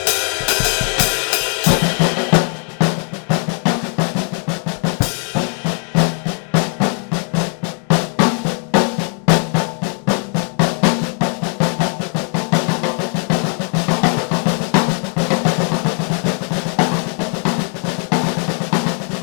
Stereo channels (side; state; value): right; quieter; 39.1 dB